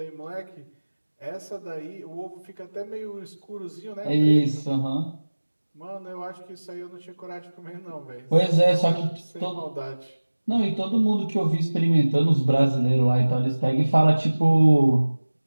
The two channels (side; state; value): both; inverted; correlation -1.00